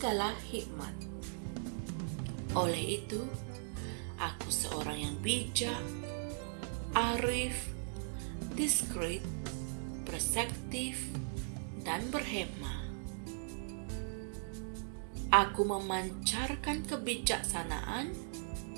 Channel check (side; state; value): left; silent; digital silence